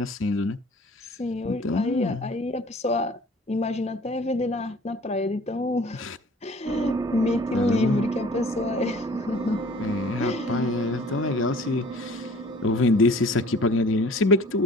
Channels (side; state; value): both; normal; correlation 0.50